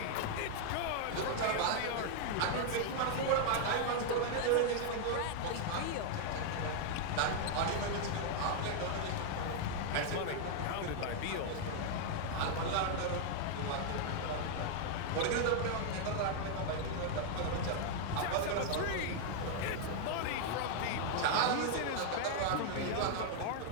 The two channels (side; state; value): both; different; correlation 0.00